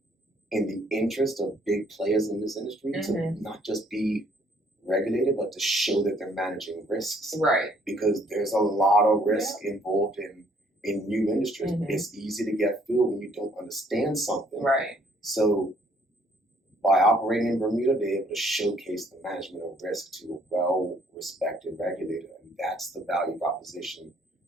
the interest of big players in this industry to not just be regulated, but to show that they're managing risks. Because there's a lot of risk involved in new industries. It's easy to get fooled when you don't understand something. So by operating in Bermuda, they're able to showcase the management of risk to a well-respected regulator. And that's the value proposition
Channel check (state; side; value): normal; both; correlation 0.63